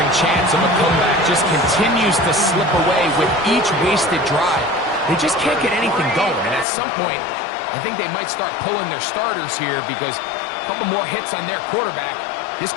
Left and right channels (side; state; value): right; drops out; at 6.7 s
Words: chance of a comeback just continues to slip away with each wasted drive. They just can't get anything going. And at some point, I think they might start pulling their starters here because a couple more hits on their quarterback, this